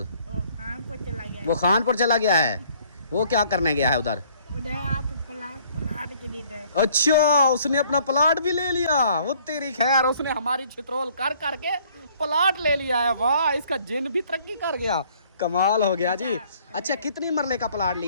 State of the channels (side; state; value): both; inverted; correlation -0.60